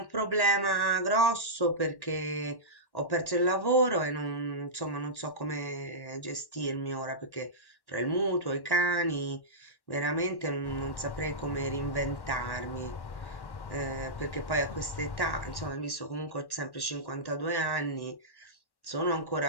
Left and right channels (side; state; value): right; late; 1.1 ms